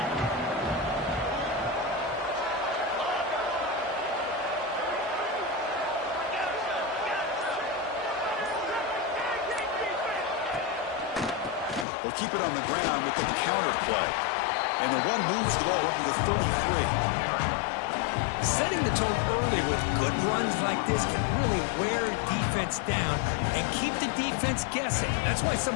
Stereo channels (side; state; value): right; drops out; at 11.9 s